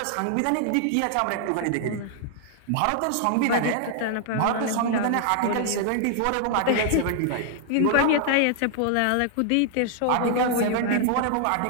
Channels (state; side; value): different; both; correlation 0.00